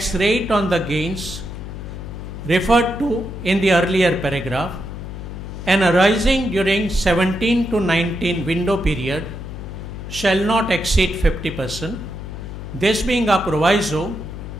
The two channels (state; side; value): noise; left; hum, 9 dB below the sound